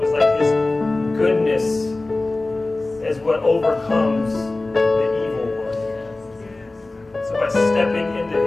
was like His goodness is what overcomes the evil one. So by stepping into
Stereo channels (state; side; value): quieter; right; 3.1 dB